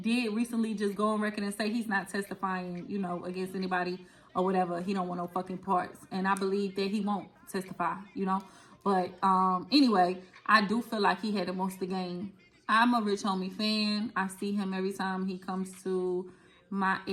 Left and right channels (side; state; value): both; identical; correlation 1.00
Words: did recently just go on record and say he's not testifying, against anybody or whatever. He don't want no fucking parts. And I believe that he won't testify, But anyway, I do feel like he had the most to gain. I'm a Rich Homie fan. I see him every time he comes to my